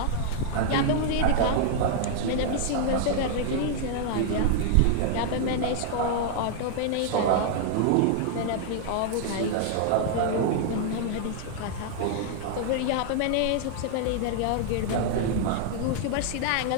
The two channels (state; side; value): different; both; correlation -0.01